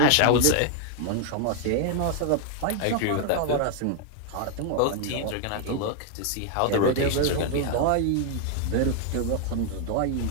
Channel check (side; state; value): both; different; correlation 0.00